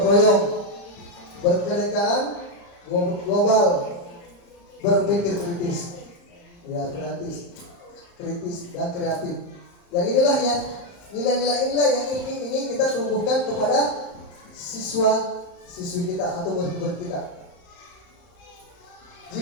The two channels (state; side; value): late; right; 35 ms